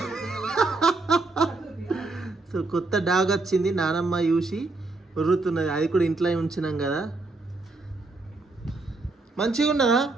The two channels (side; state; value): left; quieter; 3.4 dB